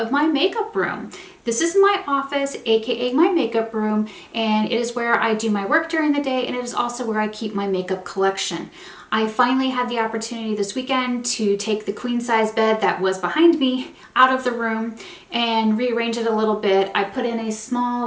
my makeup room. This is my office, aka my makeup room, and it is where I do my work during the day, and it is also where I keep my makeup collection. I finally had the opportunity this weekend to take the queen size bed that was behind me out of the room and rearrange it a little bit. I put in a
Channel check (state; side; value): identical; both; correlation 1.00